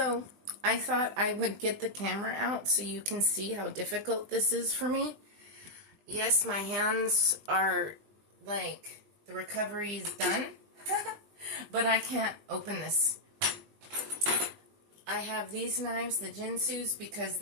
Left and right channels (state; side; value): late; left; 20 ms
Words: I thought I would get the camera out so you can see how difficult this is for me. Yes, my hands are like, the recovery is done, but I can't open this. I have these knives, the Jinsus, because